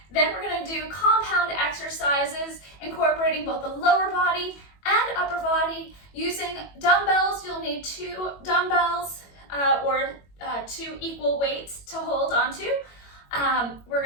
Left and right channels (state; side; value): late; right; 21 ms